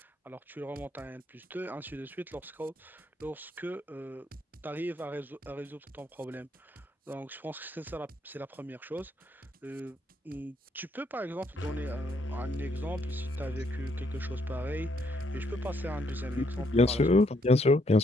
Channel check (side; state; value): both; normal; correlation 0.72